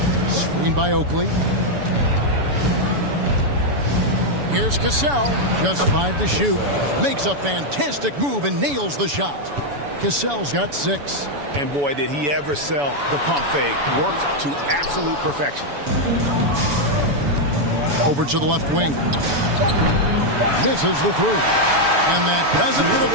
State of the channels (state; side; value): late; left; 7.0 ms